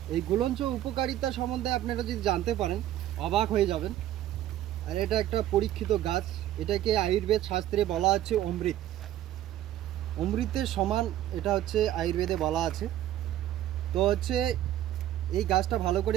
এই গুলঞ্চ উপকারিতা সম্বন্ধে আপনারা যদি জানতে পারেন অবাক হয়ে যাবেন। আর এটা একটা পরীক্ষিত গাছ। এটাকে আয়ুর্বেদ শাস্ত্রে বলা হচ্ছে অমৃত, অমৃতের সমান এটা হচ্ছে আয়ুর্বেদে বলা আছে। তো হচ্ছে এই গাছটা ভালো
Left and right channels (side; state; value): left; quieter; 12.8 dB